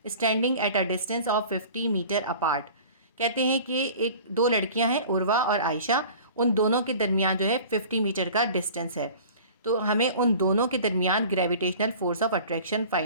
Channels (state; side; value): inverted; both; correlation -0.43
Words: standing at a distance of 50 metre apart. कहते हैं कि एक दो लड़कियां हैं, उर्वा और आयशा, उन दोनों के दरमियान जो है 50 मीटर का डिस्टेंस है। तो हमें उन दोनों के दरमियान gravitational force of attraction